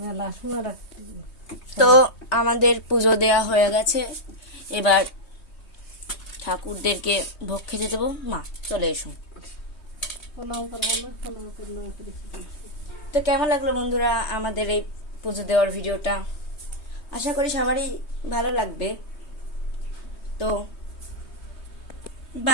সময় তো আমাদের পুজো দেয়া হয়ে গেছে, এবার ঠাকুরদেরকে ভোগ খেতে দেবো। মা চলে এসো। প্রণাম করবো না, প্রণাম করলাম করে তো কেমন লাগলো বন্ধুরা আমাদের এই পুজো দেওয়ার ভিডিওটা? আশা করি সবারই ভালো লাগবে। তো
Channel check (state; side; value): late; right; 3.2 ms